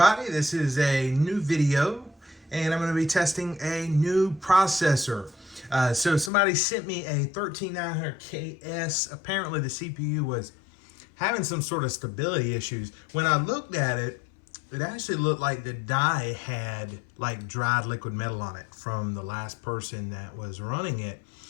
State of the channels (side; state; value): right; drops out; at 6.3 s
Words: this is a new video and I'm going to be testing a new processor. So somebody sent me a 13900KS. Apparently the CPU was having some sort of stability issues. When I looked at it, it actually looked like the die had like dried liquid metal on it from the last person that was running it.